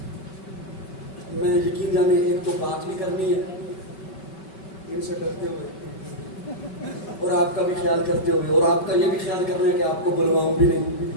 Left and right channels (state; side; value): late; right; 5.2 ms